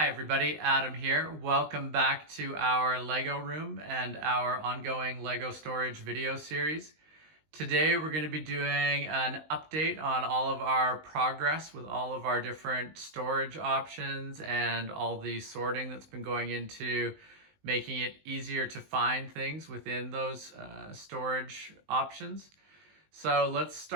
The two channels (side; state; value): left; late; 19 ms